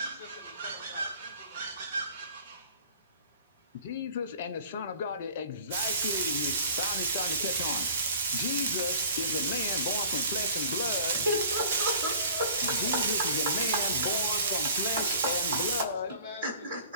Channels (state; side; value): inverted; both; correlation -0.45